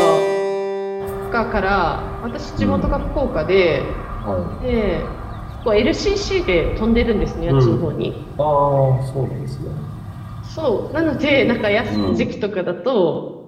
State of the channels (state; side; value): identical; both; correlation 1.00